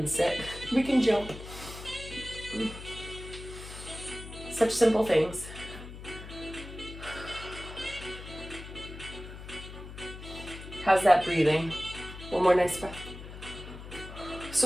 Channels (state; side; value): noise; left; hum, 12 dB below the sound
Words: sit, we can jump. Such simple things. How's that breathing? One more nice breath.